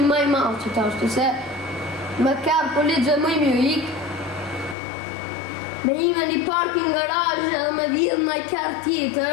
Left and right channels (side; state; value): right; drops out; at 4.8 s